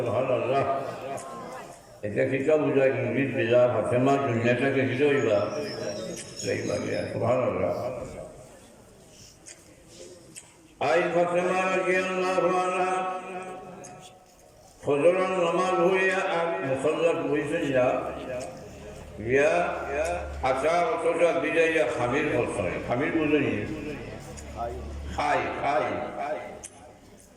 এটা কিটা বুঝায় ইংলিশ বিজা ফাতেমা দুনিয়াটাকে হিরোইবা সুবহানাল্লাহ আই ফাতেমা রাদিয়াল্লাহু আনহা ফজরের নামাজ হইয়া আর মুসাল্লাত বইছে ইয়া আশা অতটা বিজয়া খামির বলছে খামির বুঝলি খাই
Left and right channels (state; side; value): identical; both; correlation 1.00